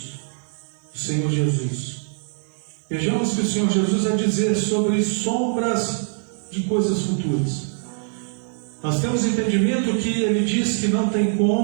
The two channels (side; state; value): left; silent; digital silence